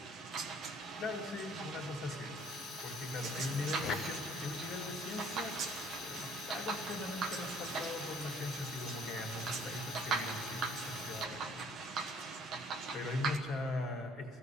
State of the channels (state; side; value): normal; both; correlation 0.58